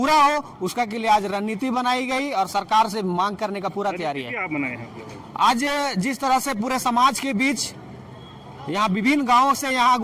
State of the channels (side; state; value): both; identical; correlation 1.00